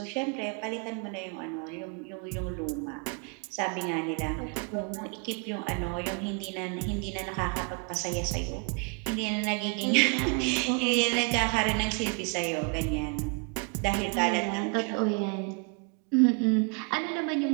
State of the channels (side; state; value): left; quieter; 34.6 dB